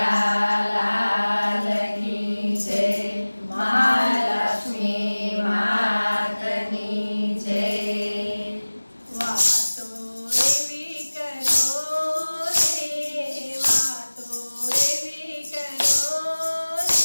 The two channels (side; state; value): both; inverted; correlation -1.00